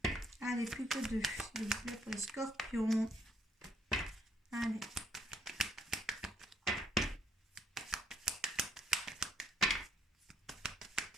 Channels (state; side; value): normal; both; correlation 0.69